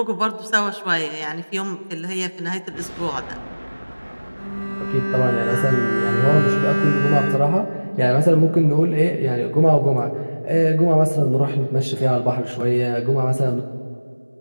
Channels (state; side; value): inverted; both; correlation -1.00